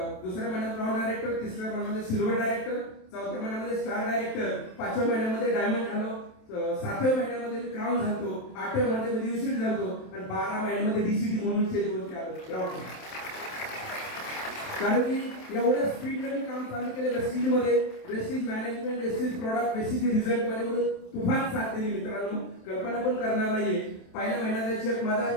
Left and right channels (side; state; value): right; late; 27 ms